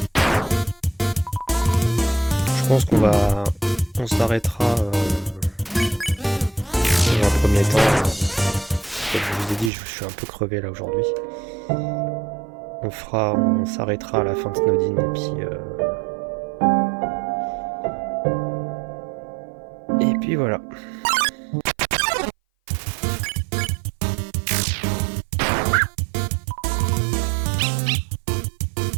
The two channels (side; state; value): left; drops out; at 9.7 s